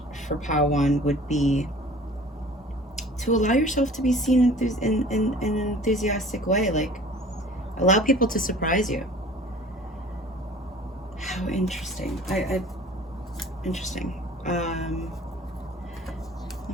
for Pile 1 would be to allow yourself to be seen in an enthusiastic way. Like, allow people to surprise you. How interesting. Interesting. Let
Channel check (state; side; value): normal; both; correlation 0.47